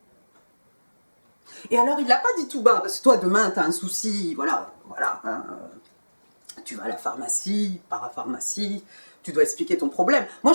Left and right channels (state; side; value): inverted; both; correlation -1.00